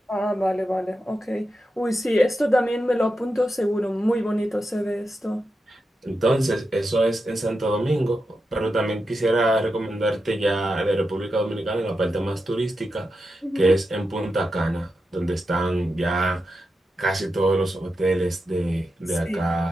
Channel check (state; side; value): normal; both; correlation 0.88